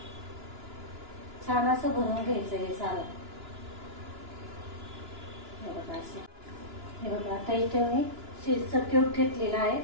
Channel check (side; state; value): left; late; 2.9 ms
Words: छान असं भरून घ्यायचं हे सारण. हे बघा आता इथे मी चीजचा क्यूब घेतलेला आहे,